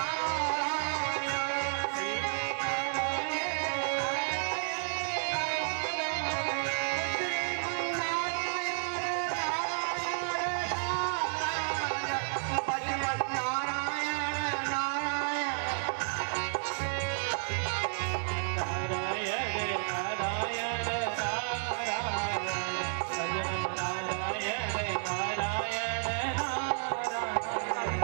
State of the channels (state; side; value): silent; left; 57 dB below the other